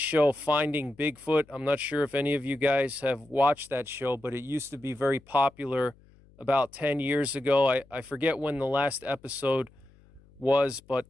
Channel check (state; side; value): noise; left; hum, 28 dB below the sound